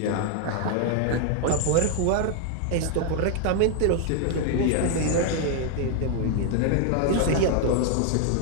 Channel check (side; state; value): both; different; correlation 0.00